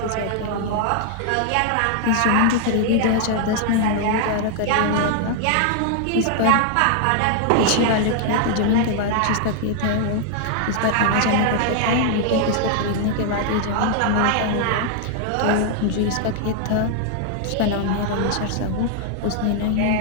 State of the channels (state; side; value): different; both; correlation -0.01